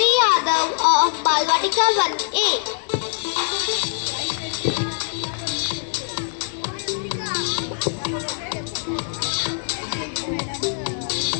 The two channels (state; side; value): silent; right; 64 dB below the other